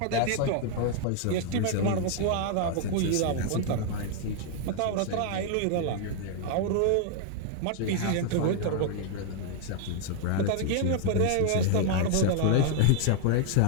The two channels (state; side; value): different; both; correlation 0.00